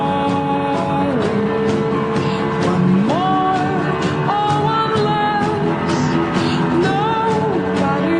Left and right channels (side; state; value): both; identical; correlation 1.00